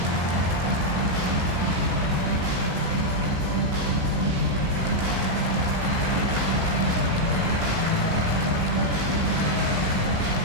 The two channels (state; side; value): late; left; 17 ms